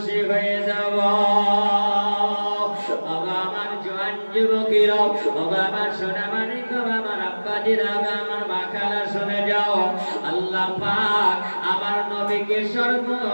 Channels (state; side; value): inverted; both; correlation -1.00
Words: হয়ে যাব। আমার জোয়ান যুবকেরা, আমার সোনামানিক, আমার আব্বাজিরা, আমার মা খালা শুনে যাও, আল্লাহ পাক আমার নবীকে